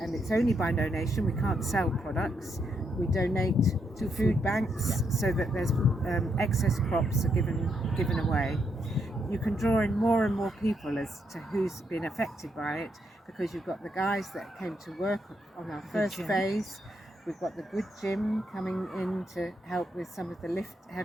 and it's only by donation, we can't sell products. We donate to food banks so that there's excess crops are given away. You can draw in more and more people as to who's been affected by it, because you've got the guys that came to work on our first phase. We've got the good gym coming in to help with some of the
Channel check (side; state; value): both; normal; correlation 0.78